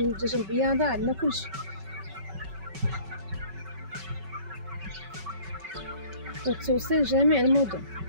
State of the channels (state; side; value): late; left; 5.3 ms